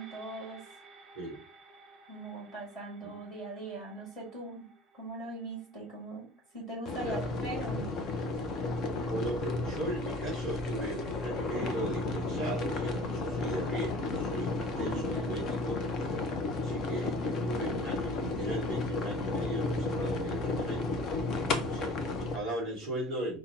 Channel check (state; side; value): normal; both; correlation 0.45